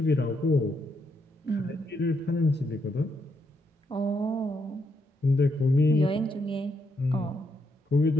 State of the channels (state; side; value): normal; both; correlation 0.78